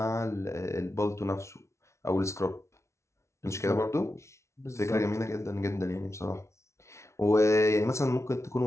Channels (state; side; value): late; right; 0.13 ms